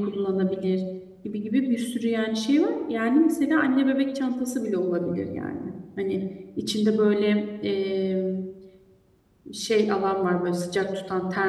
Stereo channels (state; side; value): identical; both; correlation 1.00